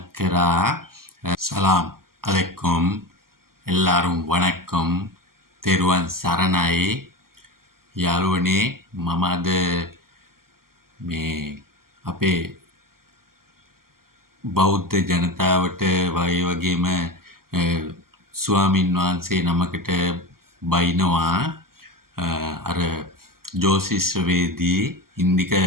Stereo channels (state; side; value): late; left; 0.92 ms